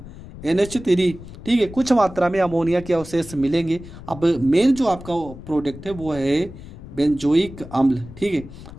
NH3। ठीक है, कुछ मात्रा में अमोनिया के अवशेष मिलेंगे। अब मेन जो आपका प्रोडक्ट है वो है बेंजोइक अम्ल। ठीक है,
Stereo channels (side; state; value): left; noise; rumble, 15 dB below the sound